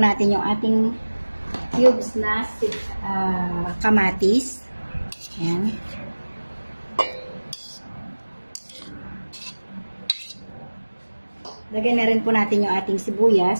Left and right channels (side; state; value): both; inverted; correlation -1.00